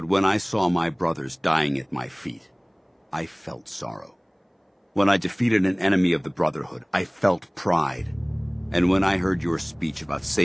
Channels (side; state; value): both; identical; correlation 1.00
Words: when I saw my brothers dying at my feet, I felt sorrow. When I defeated an enemy of the Brotherhood, I felt pride. And when I heard your speech about